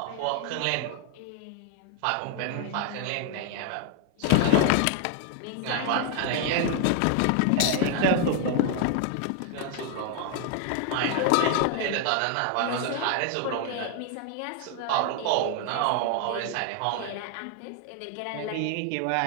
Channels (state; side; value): different; both; correlation 0.00